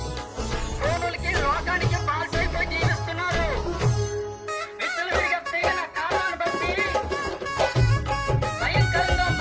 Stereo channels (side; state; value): both; identical; correlation 1.00